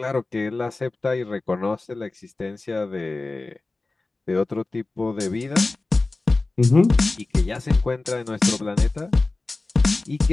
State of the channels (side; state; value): right; quieter; 3.3 dB